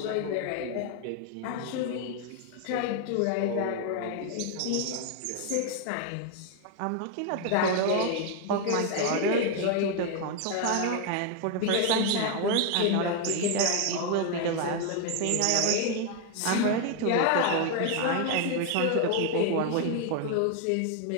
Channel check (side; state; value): both; different; correlation 0.01